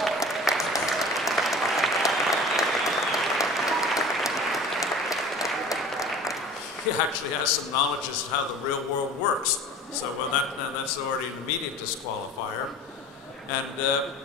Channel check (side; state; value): both; normal; correlation 0.41